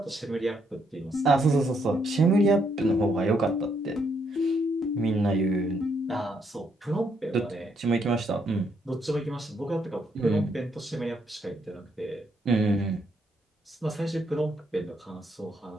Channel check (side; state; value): both; normal; correlation 0.74